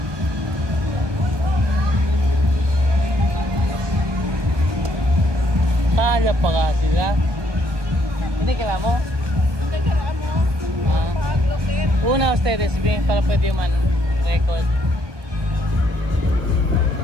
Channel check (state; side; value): late; left; 1.3 ms